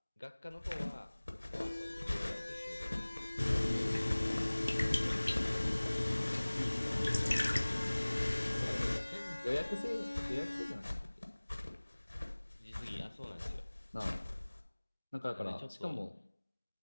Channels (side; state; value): both; inverted; correlation -1.00